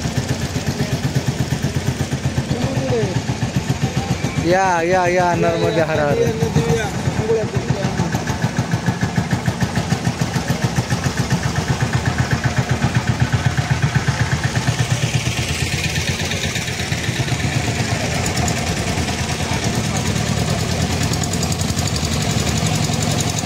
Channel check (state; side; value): noise; left; hum, 30 dB below the sound